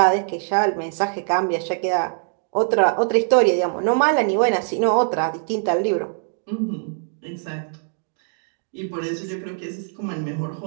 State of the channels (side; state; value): left; silent; digital silence